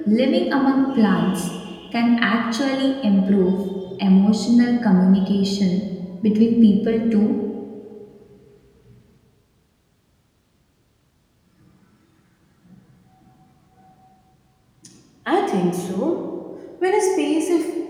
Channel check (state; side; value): identical; both; correlation 1.00